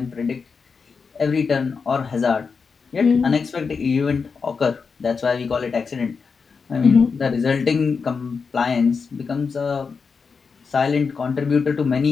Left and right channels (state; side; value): quieter; right; 5.3 dB